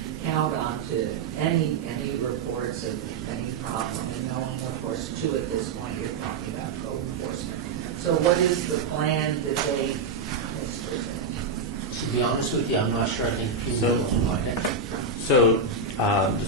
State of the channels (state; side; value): quieter; left; 4.4 dB